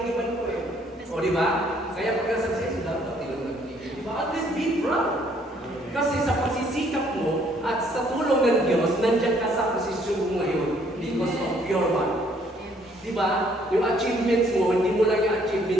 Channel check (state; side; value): normal; both; correlation 0.64